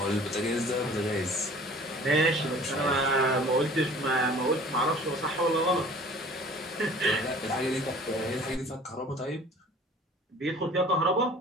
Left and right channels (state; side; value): normal; both; correlation 0.48